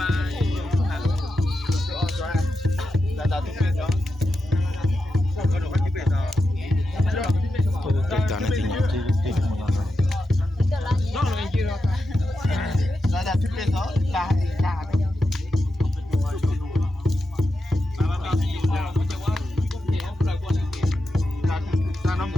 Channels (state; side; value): normal; both; correlation 0.89